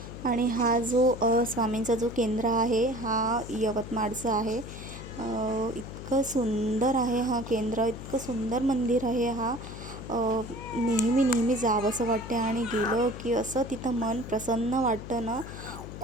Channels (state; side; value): noise; left; hum, 11 dB below the sound